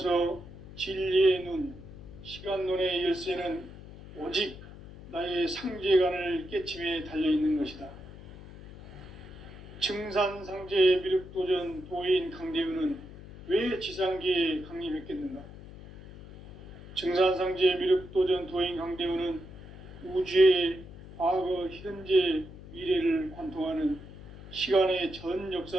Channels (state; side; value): noise; left; hum, 16 dB below the sound